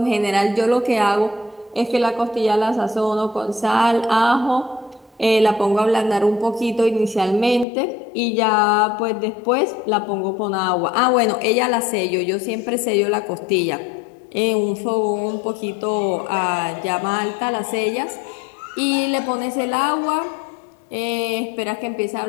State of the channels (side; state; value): right; drops out; at 7.7 s